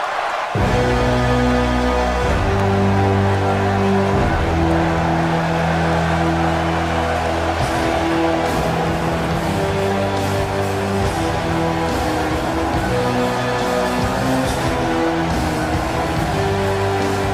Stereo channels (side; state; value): both; identical; correlation 1.00